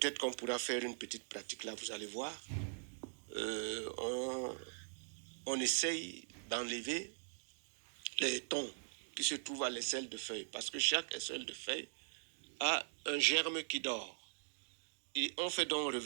qu'on pourra faire une petite pratique là, vous allez voir. On essaye d'enlever les tons qui se trouvent à l'aisselle de feuille. Parce que chaque aisselle de feuille a un germe qui dort. Et on fait donc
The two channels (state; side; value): silent; left; digital silence